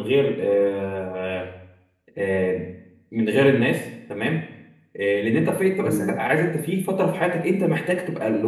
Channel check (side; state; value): both; identical; correlation 1.00